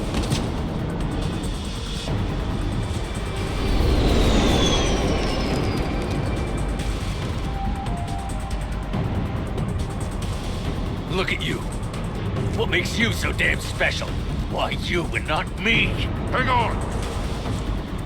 Look at you. What makes you so damn special? Why you and not me? Hang on!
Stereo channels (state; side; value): identical; both; correlation 1.00